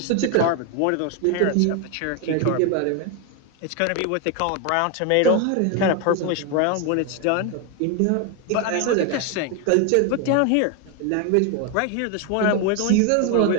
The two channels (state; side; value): different; both; correlation 0.01